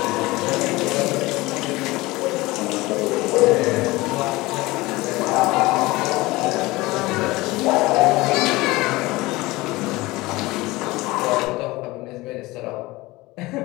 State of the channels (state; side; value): quieter; right; 20.7 dB